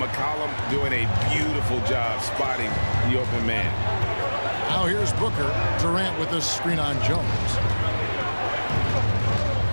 McCollum doing a beautiful job spotting the open man. Now here's Booker. Durant with the screen on Jones.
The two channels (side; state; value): both; inverted; correlation -1.00